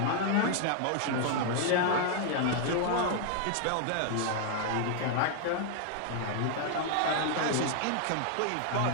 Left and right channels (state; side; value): different; both; correlation 0.00